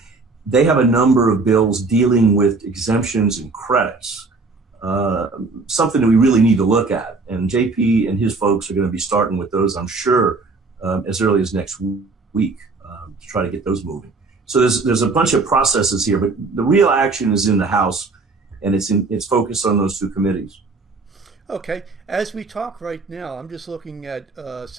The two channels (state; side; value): quieter; left; 3.9 dB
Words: they have a number of bills dealing with exemptions and credits, something that we really need to look at. And J.P. and his folks are going to be starting with those, I'm sure, as early as next week to try to get those moving. So there's a bunch of processes here, but the real action is in the House, and it's focused on those two committees. Okay, as we talk right now, I'm just looking at